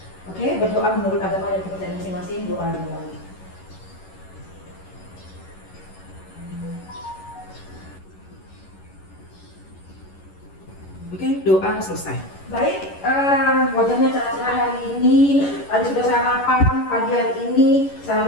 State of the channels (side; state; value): right; late; 11 ms